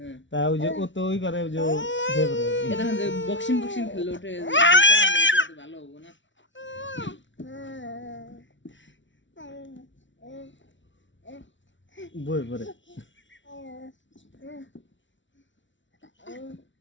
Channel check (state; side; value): late; right; 0.55 ms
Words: তা ওই যে ও তো ওই করে ওই যে বক্সিং বক্সিং খেলে ওঠে ভালো হবো না বই পরে